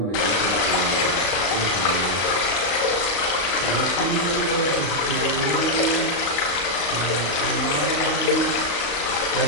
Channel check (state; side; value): late; right; 35 ms